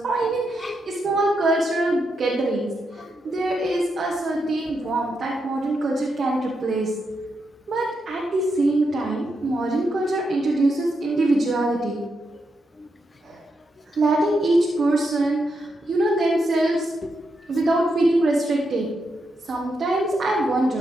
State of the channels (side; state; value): both; normal; correlation 0.83